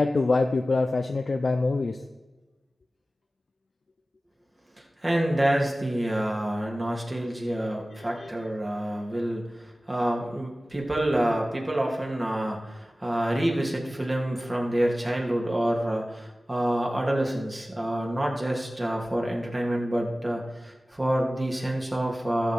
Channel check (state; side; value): normal; both; correlation 0.96